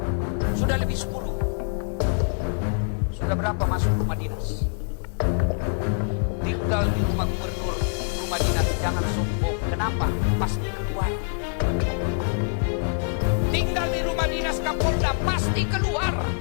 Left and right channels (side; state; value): right; silent; 62 dB below the other